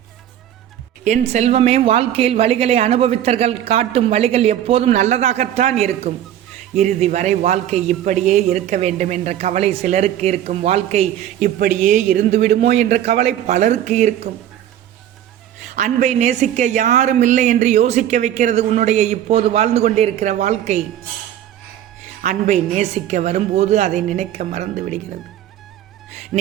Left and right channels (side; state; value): left; quieter; 11.3 dB